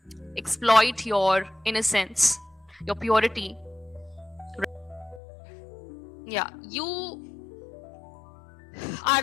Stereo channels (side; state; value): right; drops out; at 5.2 s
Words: exploit your innocence, your purity. Yeah, you are